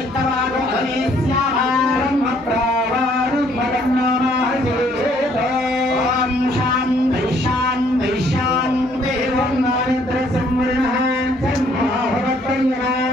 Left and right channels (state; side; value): normal; both; correlation 0.64